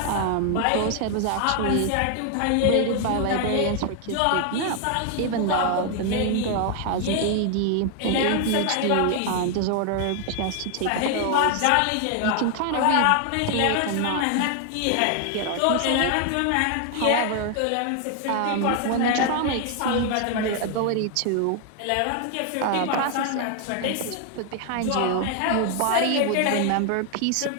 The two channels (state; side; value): different; both; correlation 0.00